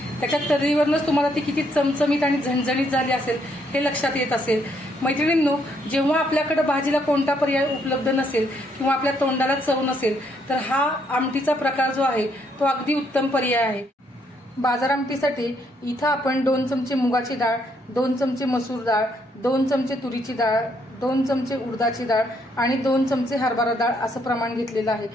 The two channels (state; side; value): normal; both; correlation 0.72